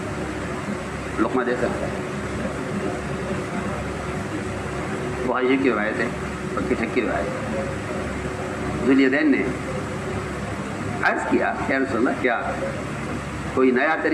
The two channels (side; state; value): both; identical; correlation 1.00